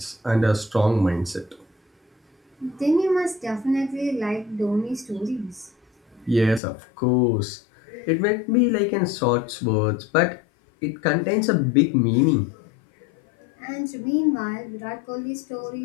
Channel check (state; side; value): drops out; right; at 6.6 s